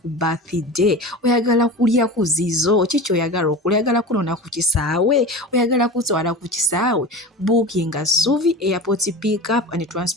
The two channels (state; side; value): normal; both; correlation 0.31